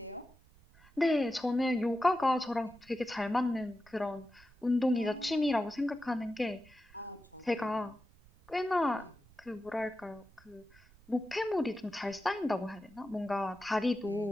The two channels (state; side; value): noise; right; rumble, 26 dB below the sound